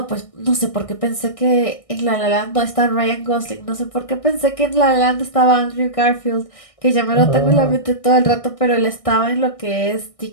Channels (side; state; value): right; late; 1.6 ms